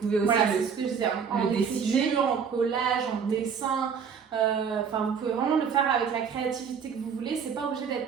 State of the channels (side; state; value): left; quieter; 6.7 dB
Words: aussi voilà, c'est ce que je disais, en écriture, en collage, en dessin. Vous pouvez vraiment le faire avec la créativité que vous voulez, c'est pas obligé